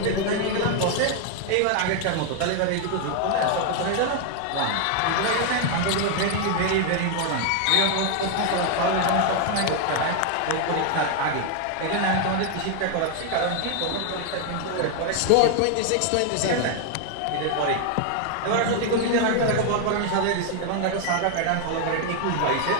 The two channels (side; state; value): both; different; correlation 0.00